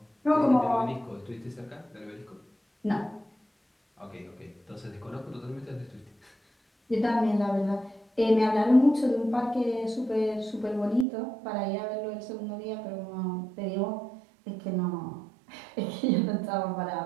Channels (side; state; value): left; drops out; at 11.1 s